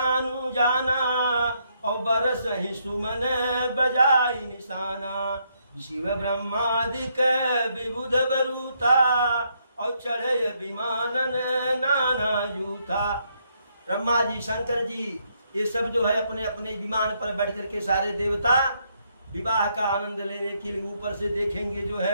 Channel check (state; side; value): inverted; both; correlation -0.74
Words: जाना, और बरस ही सुमन बजाई निशाना। शिव ब्रह्मादिक विबुध बरूथा, और चढ़े विमानन नाना जूथा। ब्रह्मा जी शंकर जी ये सब जो है अपने अपने विमान पर बैठ करके सारे देवता विवाह का आनंद लेने के लिए ऊपर से देखेंगे जो